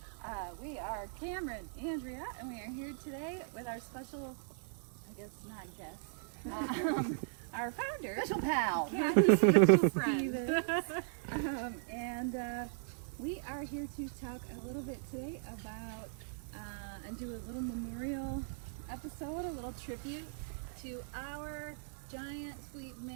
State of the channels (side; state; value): left; silent; digital silence